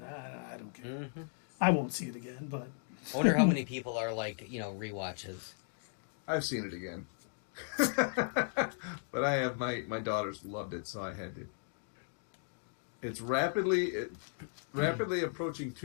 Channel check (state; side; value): silent; right; digital silence